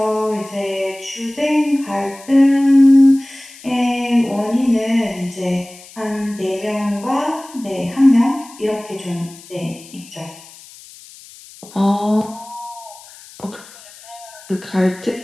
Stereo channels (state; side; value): noise; left; hiss, 20 dB below the sound